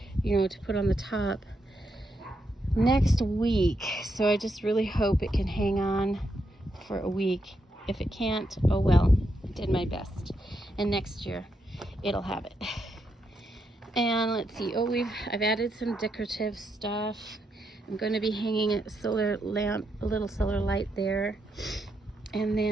you know, to put on the top next week. So I just really hope it can hang on for a week. If it can't, oh well, did my best. And next year, it'll have it. And let's see, I've added some decorative stuff. I'm going to be hanging a solar lamp, a little solar light there. And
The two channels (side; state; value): both; normal; correlation 0.81